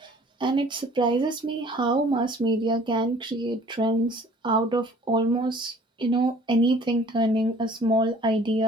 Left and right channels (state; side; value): normal; both; correlation 0.52